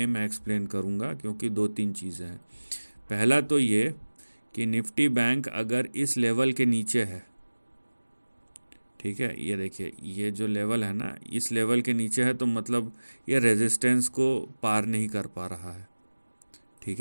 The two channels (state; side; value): inverted; both; correlation -1.00